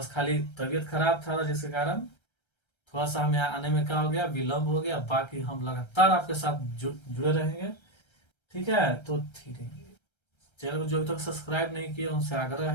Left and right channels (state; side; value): late; right; 1.3 ms